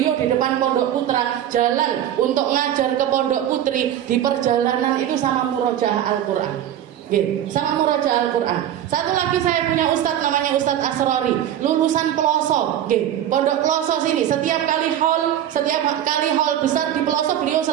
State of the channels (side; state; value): left; quieter; 11.1 dB